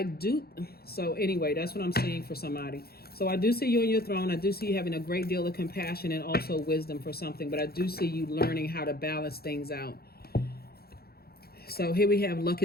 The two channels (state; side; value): late; right; 0.45 ms